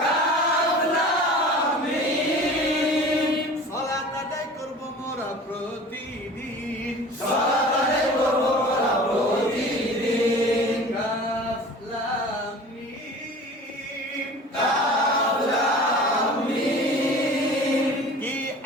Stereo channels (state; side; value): normal; both; correlation 0.41